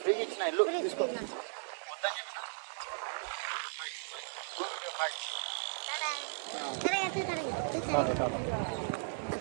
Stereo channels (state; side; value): silent; left; 54 dB below the other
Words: ఫ్రీగా ఇచ్చిన ఇల్లు తీసుకో. వద్దని చెప్పిన.